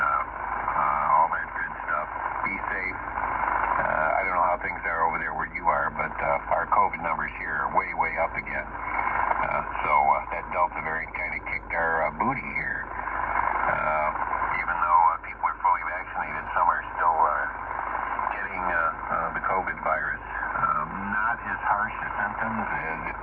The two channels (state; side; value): identical; both; correlation 1.00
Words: all that good stuff. Be safe. I don't know how things are over there where you are, but our COVID numbers here are way, way up again. So that Delta variant kind of kicked our booty here. Even though people are fully vaccinated, some are still getting the COVID virus. Not as harsh as symptoms as if